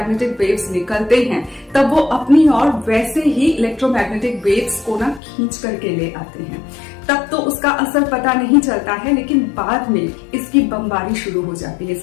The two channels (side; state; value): right; drops out; at 5.2 s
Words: वेव्स निकलते हैं, तब वो अपनी ओर वैसे ही इलेक्ट्रोमैग्नेटिक वेव्स को ना खींच करके ले आते हैं। तब तो उसका असर पता नहीं चलता है, लेकिन बाद में इसकी बमबारी शुरू हो जाती है,